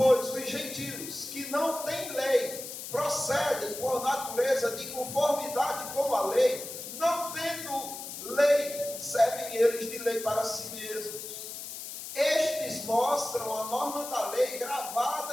os gentios que não têm lei procedem por natureza de conformidade com a lei, não tendo lei, servem eles de lei para si mesmos. Estes mostram a norma da lei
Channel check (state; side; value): noise; left; hiss, 9 dB below the sound